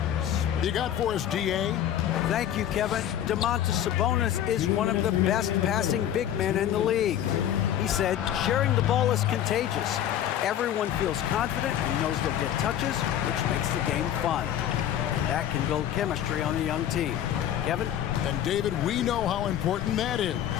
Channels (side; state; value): right; quieter; 10.8 dB